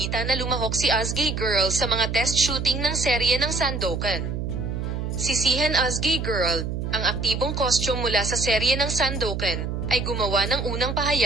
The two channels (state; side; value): noise; right; hum, 3 dB below the sound